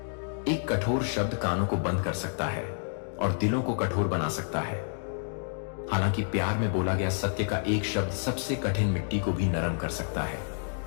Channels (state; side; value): silent; right; digital silence